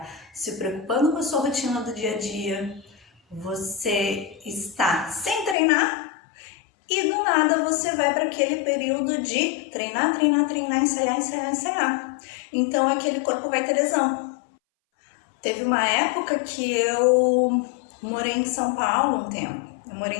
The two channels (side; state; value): right; drops out; at 5.6 s